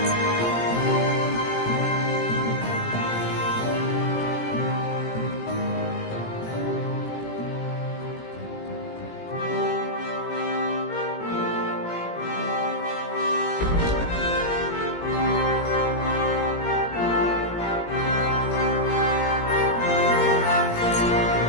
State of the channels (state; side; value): late; right; 17 ms